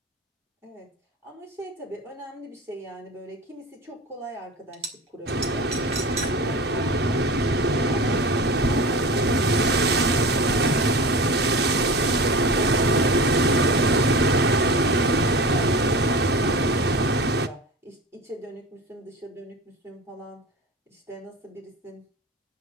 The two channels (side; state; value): both; normal; correlation 0.33